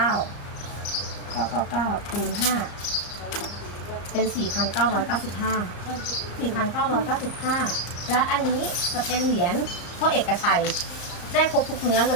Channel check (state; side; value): late; right; 34 ms